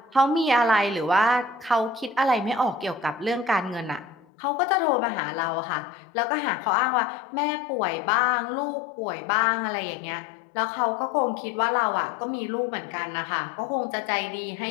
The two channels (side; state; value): right; drops out; at 4.2 s